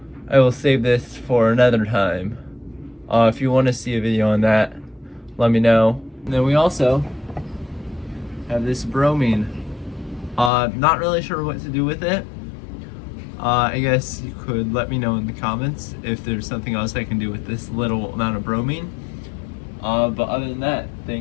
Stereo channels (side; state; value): right; drops out; at 10.5 s